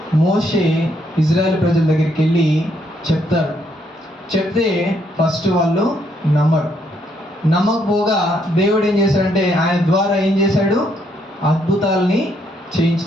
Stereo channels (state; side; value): normal; both; correlation 0.72